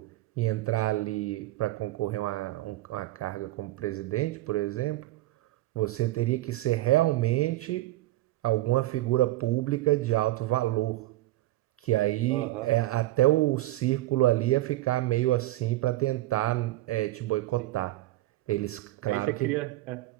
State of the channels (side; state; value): left; quieter; 16.8 dB